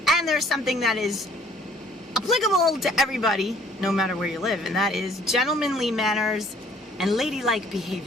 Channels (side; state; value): both; normal; correlation 0.57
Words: And there's something that is applicable to everybody, no matter where you live, and that is gentlemanly manners and ladylike